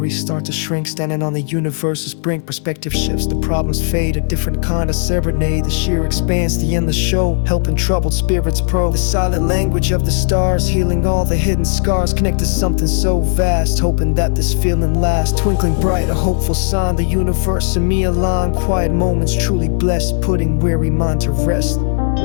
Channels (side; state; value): right; silent; digital silence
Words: start to shrink, standing on the universe's brink. Perspective shifts, the problems fade, a different kind of serenade. The sheer expanse, the endless show, helping troubled spirits probe. The silent language of the stars, healing all the hidden scars. Connect to something so vast, hoping that this feeling lasts. Twinkling bright, a hopeful sign, the universe and me align. Quiet moments truly blessed, putting weary mind to rest.